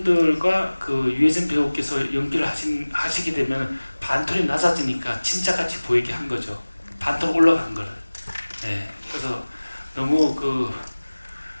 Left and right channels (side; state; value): both; inverted; correlation -1.00